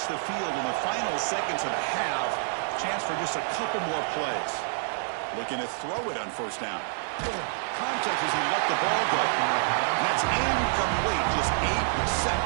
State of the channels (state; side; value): silent; left; digital silence